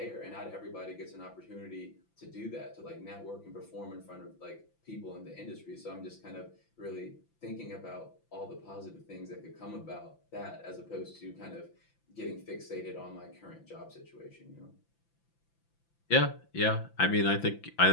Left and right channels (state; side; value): late; right; 5.9 ms